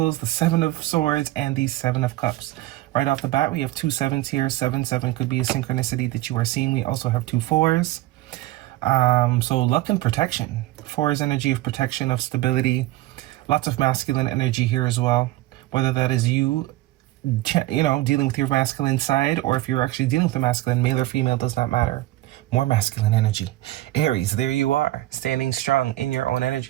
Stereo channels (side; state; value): left; quieter; 16.6 dB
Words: the Seven of Swords, and the Seven of Cups. Right off the bat, we have two sevens here. 7-7 could be a synchronicity that you are seeing. We also have two fours. So luck and protection. Four is energy of protection, of stability. Lots of masculine energy here as well. Whether that is you know, dealing with your masculine side, or if you're actually dealing with the masculine, male or female, does not matter. More masculine energy. Aries, there you are, standing strong in your own